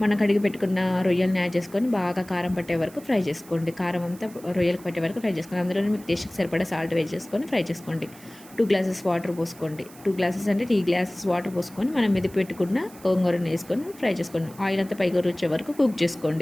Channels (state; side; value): noise; right; hiss, 22 dB below the sound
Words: మనం కడిగి పెట్టుకున్న రొయ్యల్ని యాడ్ చేసుకొని బాగా కారం పట్టే వరకు ఫ్రై చేసుకోండి. కారం అంతా రొయ్యలకు పట్టే వరకు ఫ్రై చేసుకోండి. అందులోనే మీకు టేస్ట్కి సరిపడా సాల్ట్ వేసి చేసుకొని ఫ్రై చేసుకోండి. 2 గ్లాసెస్ వాటర్ పోసుకోండి. 2 గ్లాసెస్ అంటే 3 గ్లాసెస్ వాటర్ పోసుకొని మనం మెది పెట్టుకున్న గోంగూరని వేసుకొని ఫ్రై చేసుకోండి. ఆయిల్ అంతా పైగా వచ్చే వరకు కుక్